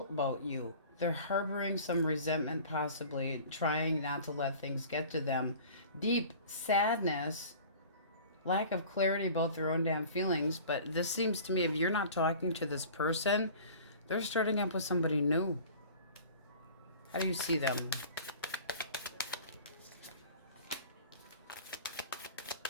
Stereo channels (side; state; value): both; inverted; correlation -0.43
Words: about you. They're harboring some resentment, possibly trying not to let things get to them. Deep sadness, lack of clarity about their own damn feelings. But this seems to me, if you're not talking to this person, they're starting up with somebody new. How do you see them?